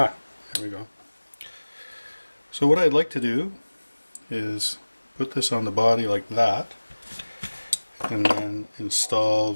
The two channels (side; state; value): both; inverted; correlation -1.00